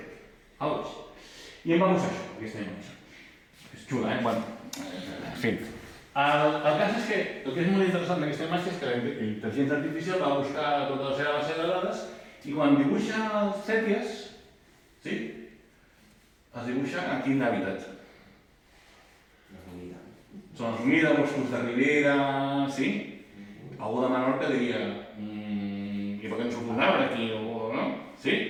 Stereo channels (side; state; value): both; identical; correlation 1.00